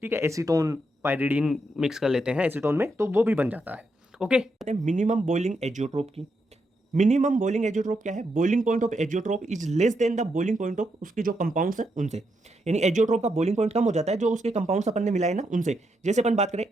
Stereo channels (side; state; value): both; normal; correlation 0.81